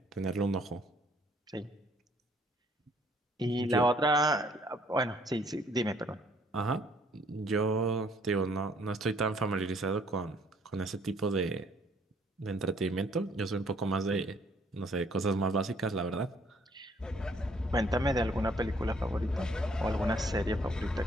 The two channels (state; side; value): normal; both; correlation 0.63